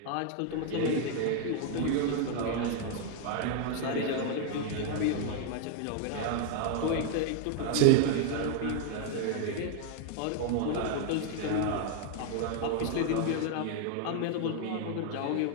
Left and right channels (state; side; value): different; both; correlation 0.00